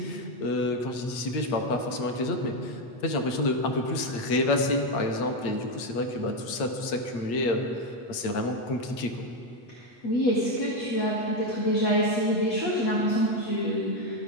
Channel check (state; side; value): late; right; 8.7 ms